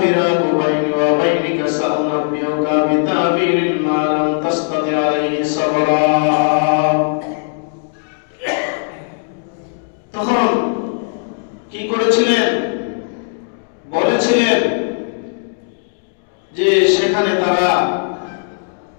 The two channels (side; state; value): right; silent; digital silence